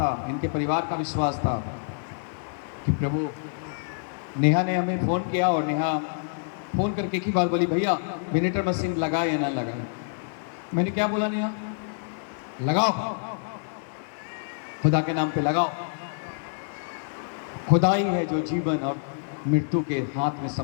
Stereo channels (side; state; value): right; silent; digital silence